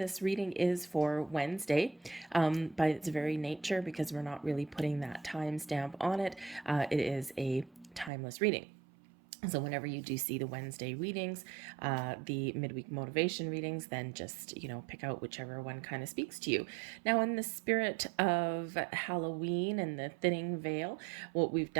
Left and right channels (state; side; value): drops out; left; at 8.1 s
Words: reading is for Wednesday, by its very nature, because we're not really putting that time stamp on it, it is a timeless reading. So whenever you do see the Wednesday readings, the midweek motivation readings, then just, pick out whichever one kind of speaks to you. Now, in the spirit of Halloween and the thinning veil, what we've